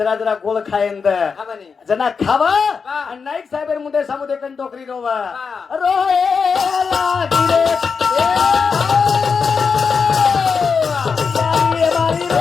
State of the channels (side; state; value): right; quieter; 5.5 dB